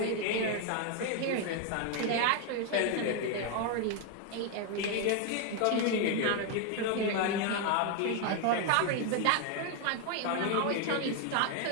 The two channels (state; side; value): different; both; correlation 0.01